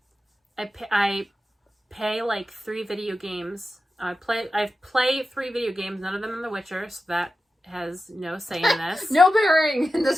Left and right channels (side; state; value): both; normal; correlation 0.92